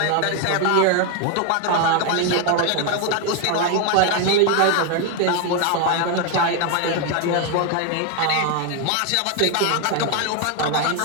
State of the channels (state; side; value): different; both; correlation 0.01